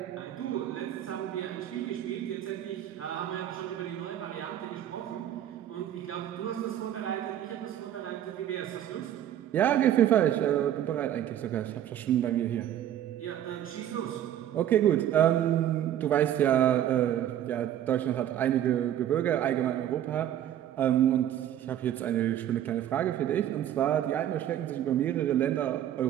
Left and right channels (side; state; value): left; quieter; 11.2 dB